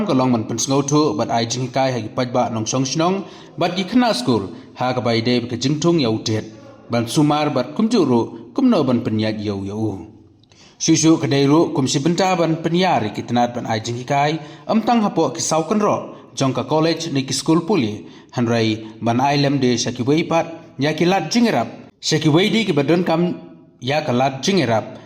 ka long man pensngau thu bat ai jingi kai hagi pajba nong song shnong bat ikna school hakaba ide ka jingtung yau tit ban sumar bat kumjuru kumno ban penyat yau. Susu kedairu kumsi benta ban penyari kitnat ban ajing hikai amtang hapo kisau kenro jong ka college ni ki school puli hanrai ban ailem de shaki weipat ya kilat jingerap shaki weidi ki badon kam ya kalat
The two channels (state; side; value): identical; both; correlation 1.00